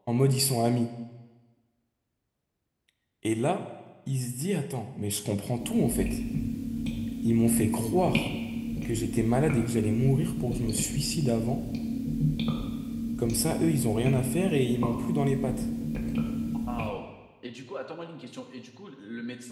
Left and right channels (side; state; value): both; identical; correlation 1.00